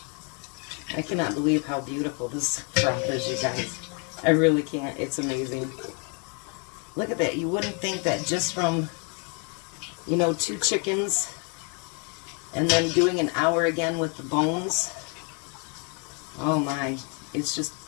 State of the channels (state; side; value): quieter; right; 36.9 dB